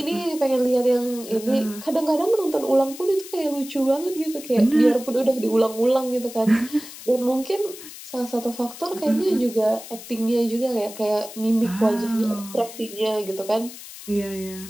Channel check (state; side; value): noise; left; hiss, 14 dB below the sound